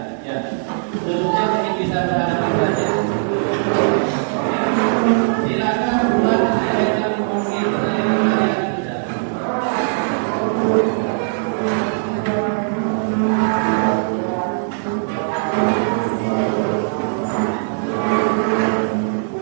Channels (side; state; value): left; silent; 56 dB below the other